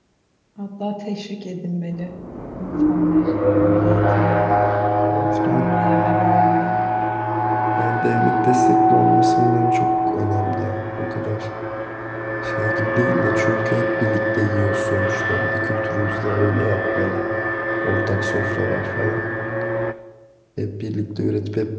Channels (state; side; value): identical; both; correlation 1.00